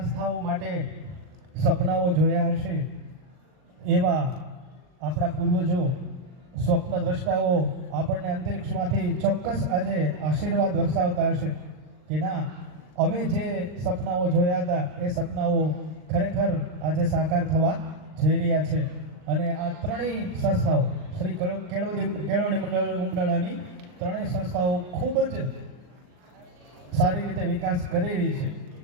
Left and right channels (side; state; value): left; late; 39 ms